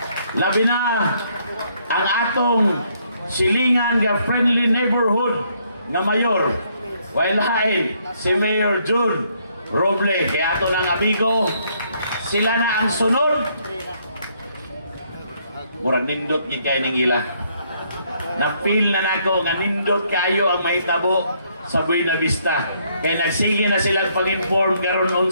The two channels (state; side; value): inverted; both; correlation -0.70